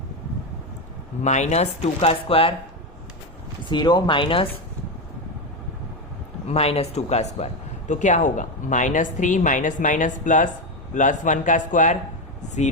-2 का स्क्वायर, 0 -2 का स्क्वायर। तो क्या होगा, -3 माइनस प्लस 1 का स्क्वायर,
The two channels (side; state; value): both; normal; correlation 0.12